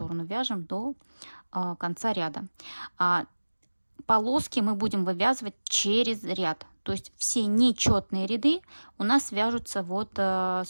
вяжем до конца ряда. Полоски мы будем вывязывать через ряд, то есть все нечетные ряды у нас вяжутся вот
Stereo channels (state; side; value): inverted; both; correlation -1.00